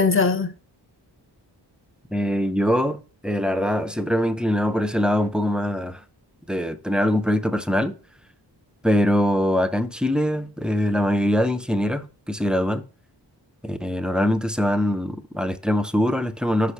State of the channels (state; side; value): normal; both; correlation 0.81